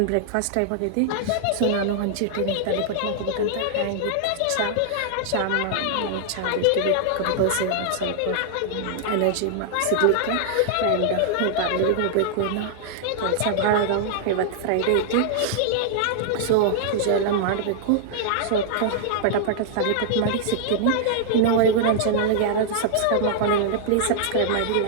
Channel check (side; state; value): both; different; correlation -0.01